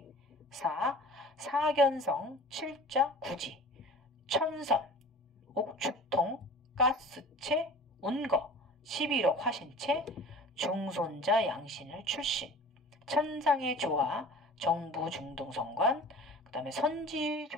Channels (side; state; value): both; normal; correlation 0.42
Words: 4. 사견성, 칠자, 구지, 천선, 옥추통, 가스체, 운거, 11억 화신체, 중손자 양신을 출신, 천상의 조화, 정부 중등성관, 그 다음에